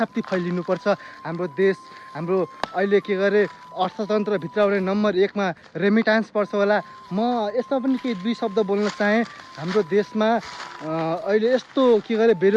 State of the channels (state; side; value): identical; both; correlation 1.00